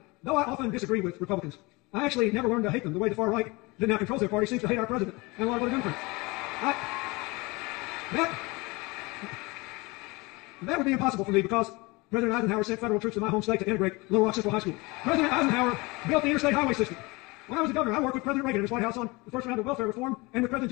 though I often disagree with Republicans, I actually never learned to hate them the way the far right that now controls their party seems to hate our president and a lot of other Democrats. That would be impossible for me because President Eisenhower sent federal troops to my home state to integrate Little Rock Central High School. President Eisenhower built the interstate highway system. When I was a governor, I worked with President Reagan in his White House on the first round of welfare reform and with President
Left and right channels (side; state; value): right; quieter; 24.6 dB